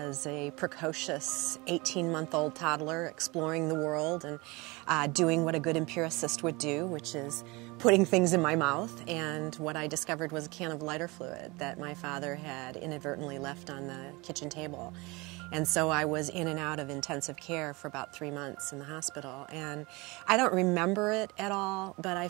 a precocious 18-month-old toddler exploring the world and doing what a good empiricist would do, which is putting things in my mouth. And what I discovered was a can of lighter fluid that my father had inadvertently left on the kitchen table. And so I was in and out of intensive care for about 3 months in the hospital. And I don't remember it at all, but I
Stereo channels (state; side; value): quieter; left; 25.0 dB